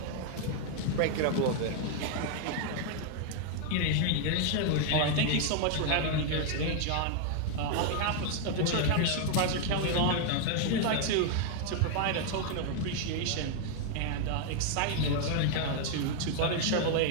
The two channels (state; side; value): different; both; correlation 0.00